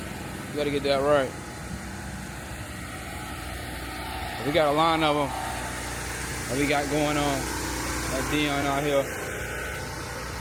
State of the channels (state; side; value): identical; both; correlation 1.00